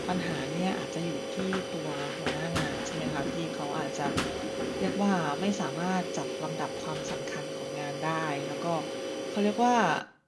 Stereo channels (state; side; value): identical; both; correlation 1.00